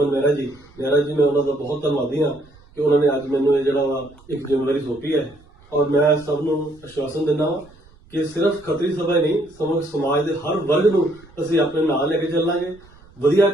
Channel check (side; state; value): right; noise; rumble, 27 dB below the sound